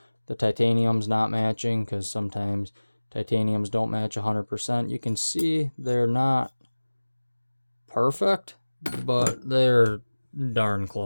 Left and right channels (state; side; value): inverted; both; correlation -1.00